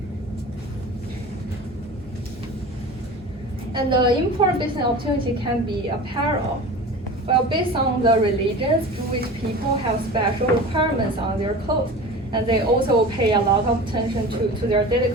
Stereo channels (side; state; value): both; normal; correlation 0.35